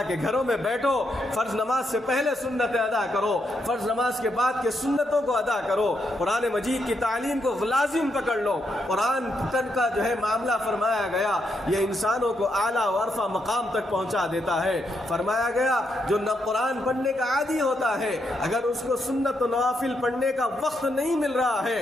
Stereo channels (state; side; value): normal; both; correlation 0.80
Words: کے گھروں میں بیٹھو، فرض نماز سے پہلے سنتیں ادا کرو، فرض نماز کے بعد کے سنتوں کو ادا کرو، قرآن مجید کی تعلیم کو لازم پکڑ لو۔ قرآن کا جو ہے معاملہ فرمایا گیا یہ انسانوں کو اعلیٰ و عرفہ مقام تک پہنچا دیتا ہے۔ فرمایا گیا جو نہ قرآن پڑھنے کا عادی ہوتا ہے اگر اس کو سنت و نوافل پڑھنے کا وقت نہیں مل رہا